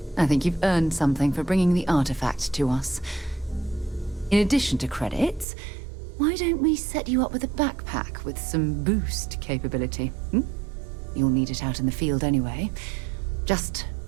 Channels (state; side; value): drops out; left; at 5.5 s